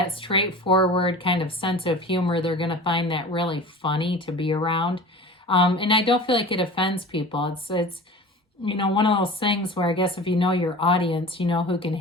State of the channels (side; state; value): both; normal; correlation 0.37